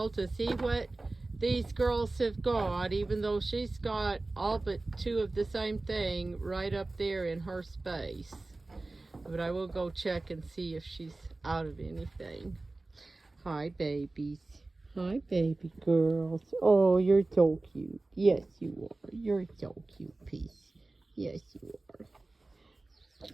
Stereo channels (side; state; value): left; quieter; 3.1 dB